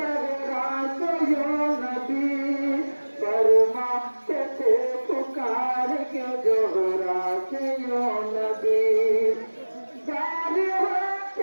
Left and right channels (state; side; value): inverted; both; correlation -1.00